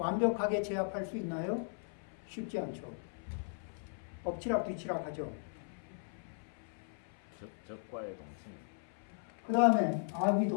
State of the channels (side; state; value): right; silent; 53 dB below the other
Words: 제압할 수 있나요? 쉽지 않죠. 엎치락 뒤치락 하죠. 적과의 동침. 그 다음에